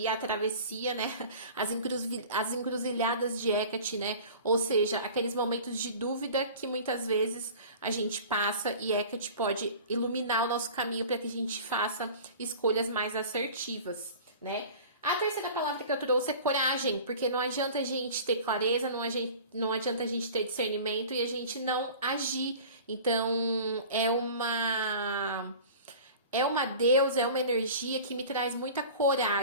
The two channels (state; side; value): inverted; both; correlation -0.41